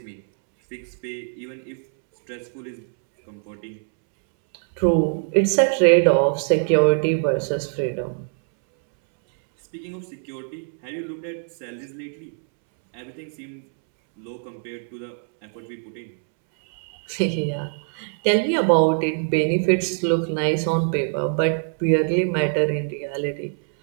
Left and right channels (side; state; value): left; silent; 63 dB below the other